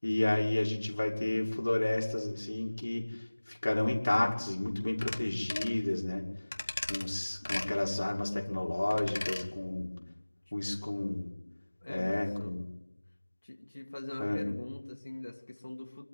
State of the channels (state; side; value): inverted; both; correlation -1.00